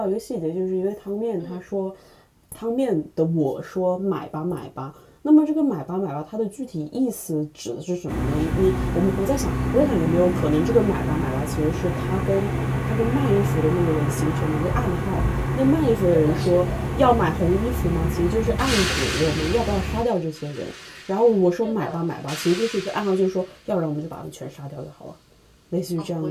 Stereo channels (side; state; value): both; identical; correlation 1.00